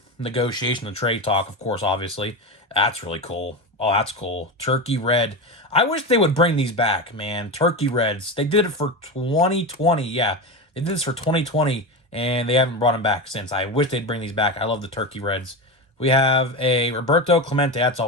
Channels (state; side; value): normal; both; correlation 0.20